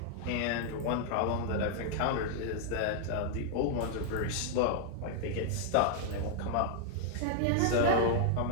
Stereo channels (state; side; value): different; both; correlation 0.00